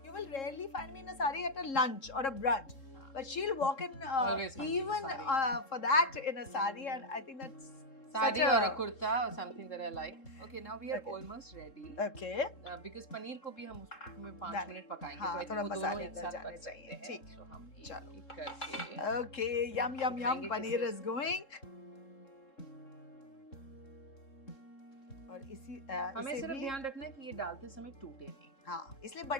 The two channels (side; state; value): right; late; 3.7 ms